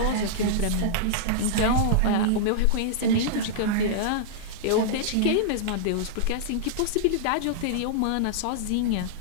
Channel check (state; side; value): different; both; correlation -0.02